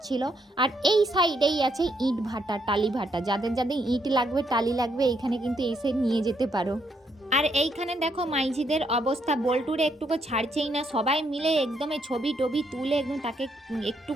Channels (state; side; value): normal; both; correlation 0.75